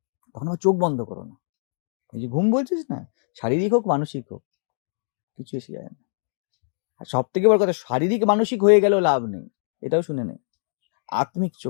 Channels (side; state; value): right; silent; digital silence